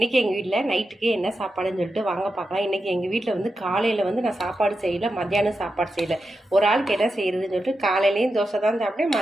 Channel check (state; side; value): normal; both; correlation 0.89